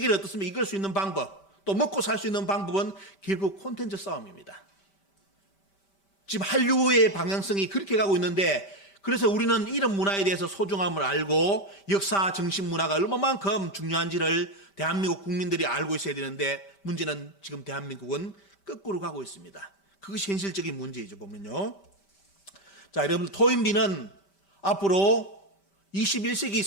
어떻습니까? 이끌 수 있는 방법, 또 먹고 살 수 있는 방법은 결국 콘텐츠 싸움입니다. 지금 한류의 방향성이 그렇게 가고 있는데 그래서 우리는 이런 문화에 대해서 소중함을 알고 역사 정신 문화가 얼마만큼 중요한지를 대한민국 국민들이 알고 있어야 되는데 문제는 지금 대한민국은 거꾸로 가고 있습니다. 그것이 현실적인 문제이죠, 보면요. 자, 여러분, 토인비는 앞으로 21세기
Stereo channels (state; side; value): late; right; 5.1 ms